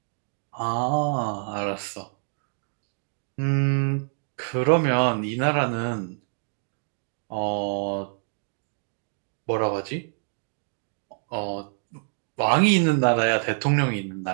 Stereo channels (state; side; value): silent; left; digital silence